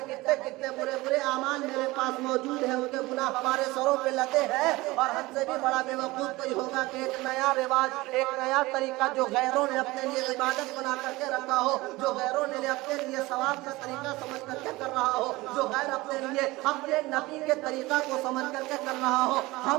کتنے برے اعمال میرے پاس موجود ہیں، ان کے گناہ ہمارے سروں پہ لدے ہیں۔ اور ہم سے بھی بڑا بے وقوف کوئی ہوگا کہ ایک نیا رواج، ایک نیا طریقہ جو غیروں نے اپنے لیے عبادت بنا کر کے رکھا ہو، جو غیروں نے اپنے لیے ثواب کا طریقہ سمجھ کر کے کر رہا ہو، جو غیر اپنے لیے اپنے نبی کے طریقہ کو سمجھ کر کے کر رہا ہو،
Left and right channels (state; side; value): quieter; left; 20.6 dB